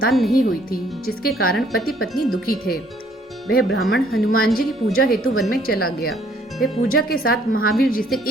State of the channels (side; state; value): both; normal; correlation 0.63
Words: नहीं हुई थी, जिसके कारण पति पत्नी दुखी थे। वह ब्राह्मण हनुमान जी की पूजा हेतु वन में चला गया। वह पूजा के साथ महावीर जी से